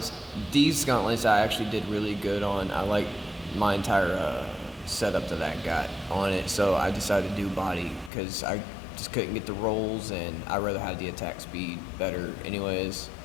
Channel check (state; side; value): drops out; right; at 8.1 s